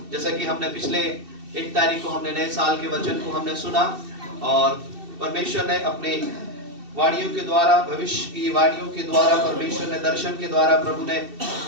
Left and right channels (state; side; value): late; left; 2.7 ms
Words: जैसा कि हमने पिछले 1 तारीख को हमने नए साल के वचन को हमने सुना और परमेश्वर ने अपने वाणियों के द्वारा, भविष्य की वाणियों के द्वारा, परमेश्वर ने दर्शन के द्वारा,